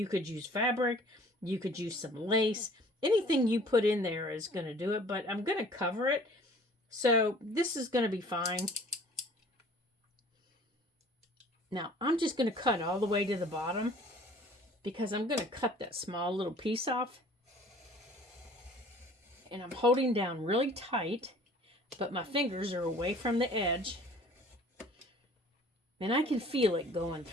could use fabric. You could use some lace. Anything you put in there is going to do it, but I'm going to cover it. So this is going to be fine. Now, I'm just going to cut all the way to the bottom because I'm going to cut that small little piece off. And I'm holding down really tight, but my fingers are away from the edge. And I can feel it going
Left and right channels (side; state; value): both; normal; correlation 0.51